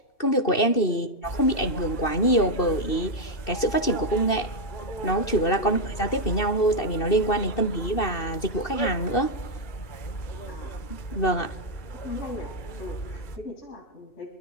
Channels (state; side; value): late; right; 2.7 ms